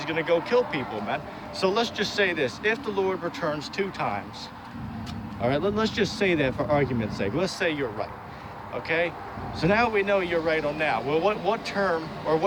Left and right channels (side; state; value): both; identical; correlation 1.00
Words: going to go kill people, man. So let's just say this: if the Lord returns 2 times, all right, let's just say that for argument's sake. Let's say you're right. Okay, so now we know you're right on that. Well, what term or